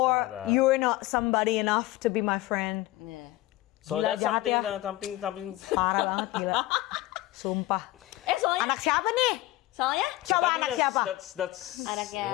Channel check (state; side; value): quieter; right; 17.7 dB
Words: like that. you're not somebody enough to be my friend. Yeah. So Gila, that's jahat something. Parah banget gila. Sumpah. Soalnya, Anak siapa nih? So, Coba tapi anak siapa? That's Anaknya-